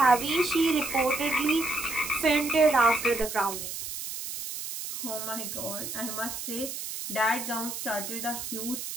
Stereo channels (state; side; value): noise; right; hiss, 7 dB below the sound